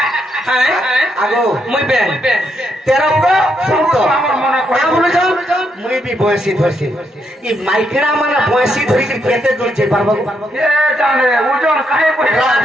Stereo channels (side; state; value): both; normal; correlation 0.78